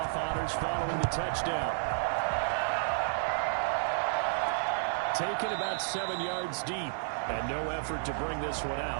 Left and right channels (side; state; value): left; silent; digital silence